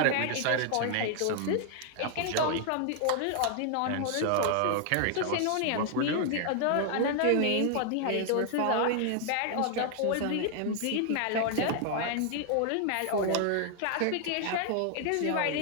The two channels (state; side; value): different; both; correlation 0.00